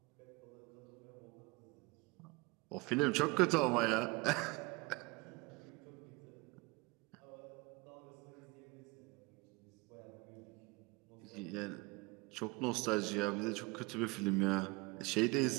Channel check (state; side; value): quieter; left; 24.8 dB